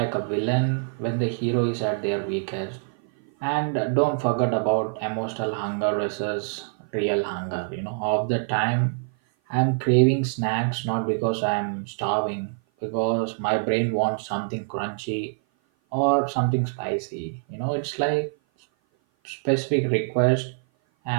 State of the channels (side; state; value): left; silent; 56 dB below the other